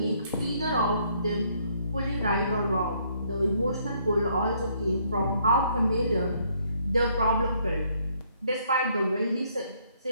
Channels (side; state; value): both; inverted; correlation -0.68